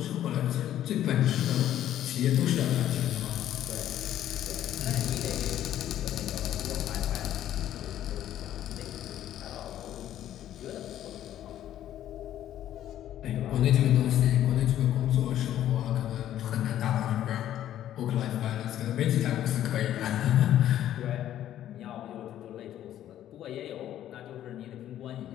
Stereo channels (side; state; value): right; quieter; 11.9 dB